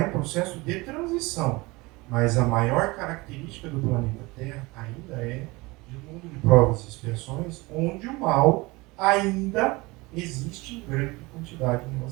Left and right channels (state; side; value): quieter; left; 23.4 dB